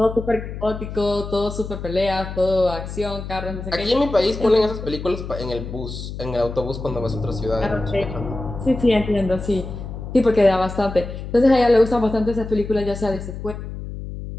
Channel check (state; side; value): noise; left; hum, 9 dB below the sound